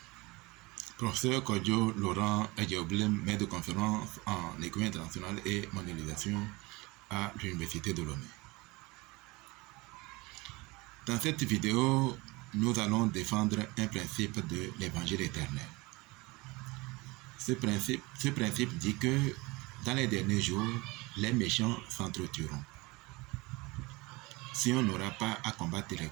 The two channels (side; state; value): left; quieter; 23.8 dB